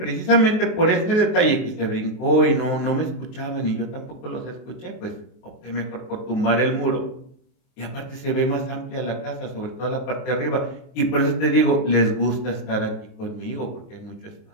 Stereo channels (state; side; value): late; right; 23 ms